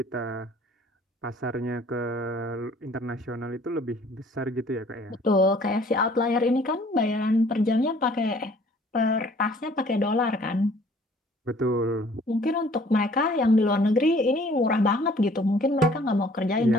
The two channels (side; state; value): both; normal; correlation 0.55